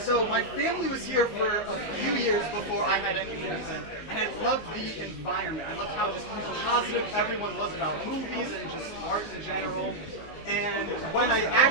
my family was here for a few years before I had any movies, and I loved the environment. I loved how just positive everyone was about movies and just art in general. And when I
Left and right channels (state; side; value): late; right; 19 ms